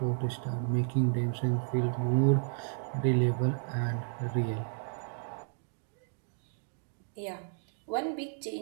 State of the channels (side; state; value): left; silent; 56 dB below the other